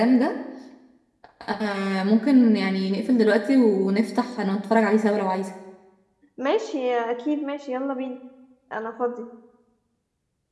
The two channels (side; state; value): both; identical; correlation 1.00